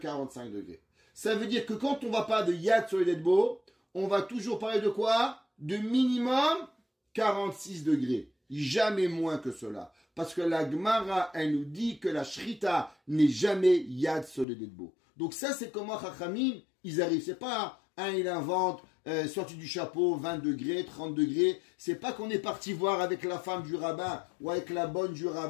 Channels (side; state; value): right; drops out; at 14.5 s